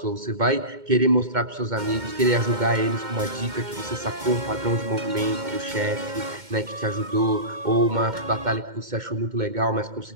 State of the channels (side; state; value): left; late; 2.1 ms